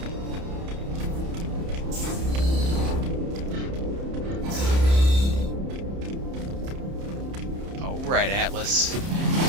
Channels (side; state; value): left; late; 30 ms